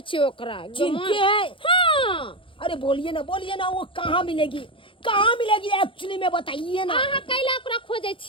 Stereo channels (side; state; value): right; late; 0.25 ms